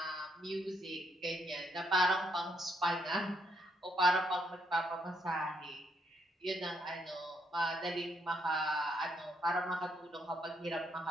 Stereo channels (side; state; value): both; normal; correlation 0.75